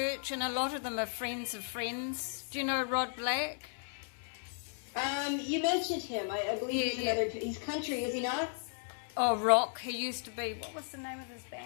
and a lot of them are friends of friends. Do you know Rod Black? You mentioned him. I believe he's country, is he not? Oh, rock. He used to be. What was the name of his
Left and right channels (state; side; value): silent; right; 54 dB below the other